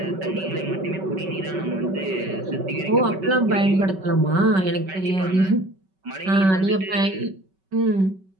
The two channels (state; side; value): late; left; 5.3 ms